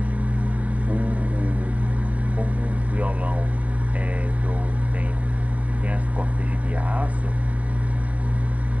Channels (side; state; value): left; late; 0.069 ms